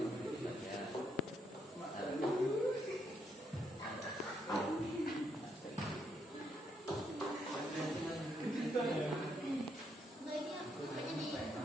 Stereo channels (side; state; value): both; normal; correlation 0.76